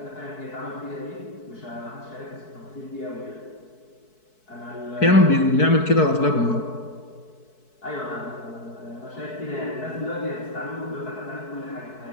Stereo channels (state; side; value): late; right; 4.6 ms